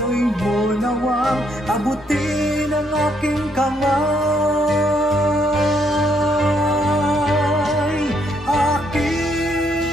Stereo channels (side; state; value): both; normal; correlation 0.72